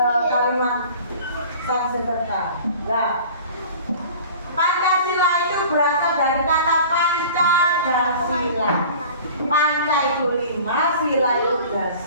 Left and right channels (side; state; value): both; inverted; correlation -0.43